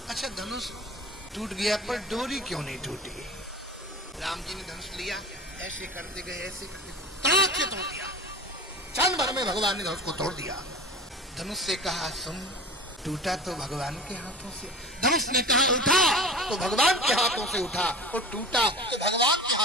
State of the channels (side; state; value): both; normal; correlation 0.35